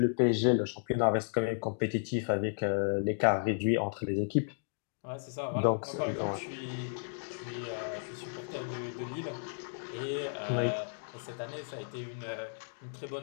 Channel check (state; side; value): silent; right; digital silence